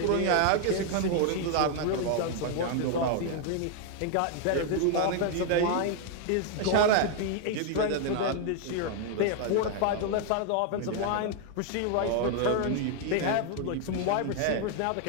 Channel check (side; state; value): both; different; correlation 0.00